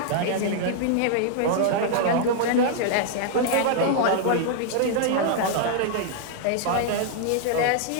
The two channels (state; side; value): different; both; correlation -0.01